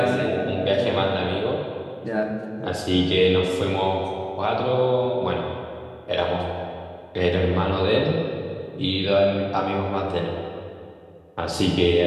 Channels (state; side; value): identical; both; correlation 1.00